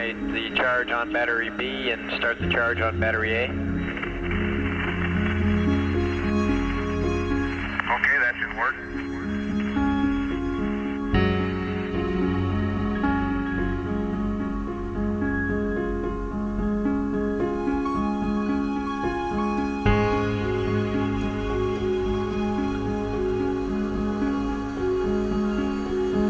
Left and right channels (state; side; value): identical; both; correlation 1.00